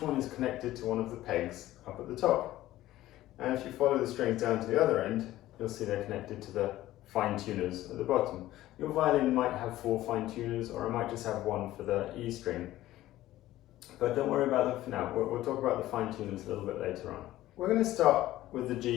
one is connected to one of the pegs up at the top. And if you follow the strings down to the other end, you'll see they're connected to the fine tuners at the bottom. Your violin might have 4 fine tuners, or it might just have 1 for the E string. But don't worry about them for now. We'll talk about the fine tuners a little bit later on. We're going to start with the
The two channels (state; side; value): quieter; right; 15.2 dB